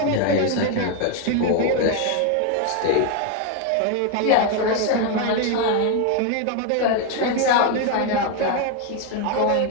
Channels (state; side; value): different; both; correlation 0.01